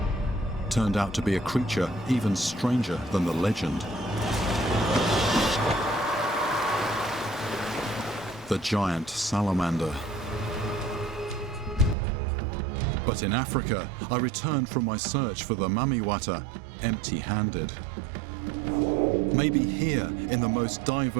turned out to be a creature even stranger than the legend. The giant salamander. But in Africa, I returned from my search for the mamiwata empty-handed. Maybe here, in the most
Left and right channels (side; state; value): left; drops out; at 12.0 s